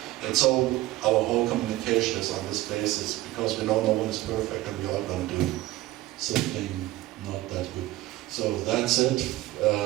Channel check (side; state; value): left; quieter; 17.0 dB